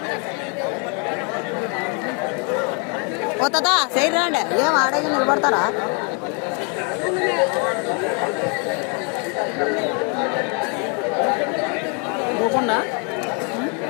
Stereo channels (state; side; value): quieter; right; 35.3 dB